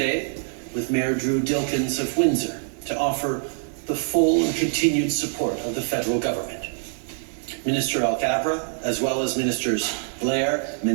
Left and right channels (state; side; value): silent; left; digital silence